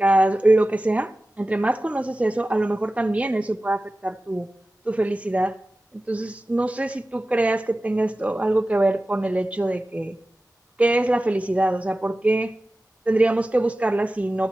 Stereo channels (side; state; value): both; normal; correlation 0.95